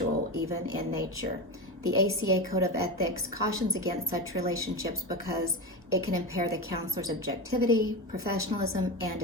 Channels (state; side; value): normal; both; correlation 0.20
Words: even in nature. The ACA Code of Ethics cautions against such relationships because it can impair the counselor's objectivity, professionalism, and